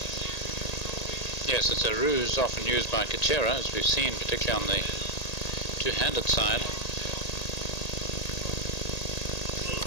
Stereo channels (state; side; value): late; right; 1.8 ms